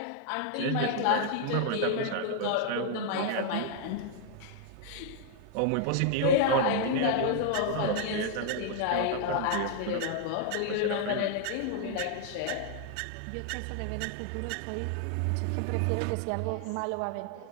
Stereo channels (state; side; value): different; both; correlation 0.00